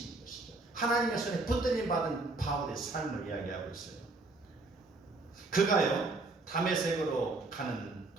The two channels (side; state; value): left; quieter; 3.3 dB